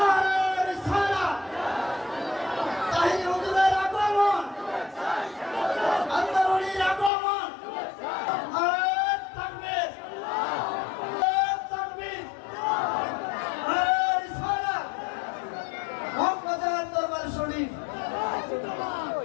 রিসালাত, তাহির হুজুরের আগমন, আল্লাহর ওলির আগমন, নারায়ে তাকবীর, নারায়ে তাকবীর, নারায়ে রিসালাত, মক্কার দরবার শরীফ।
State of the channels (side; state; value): right; drops out; at 7.1 s